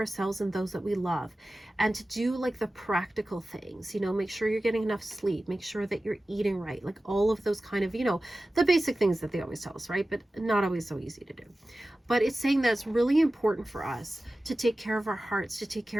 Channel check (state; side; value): normal; both; correlation 0.95